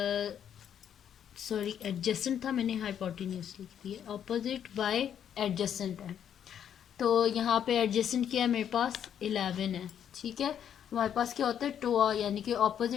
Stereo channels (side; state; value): right; quieter; 9.2 dB